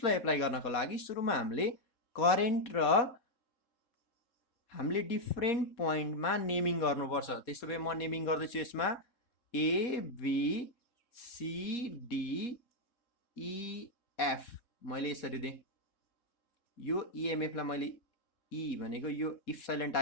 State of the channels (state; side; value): late; right; 4.2 ms